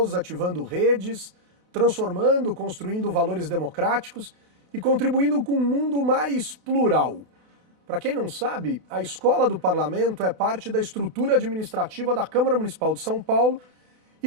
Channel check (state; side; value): late; left; 28 ms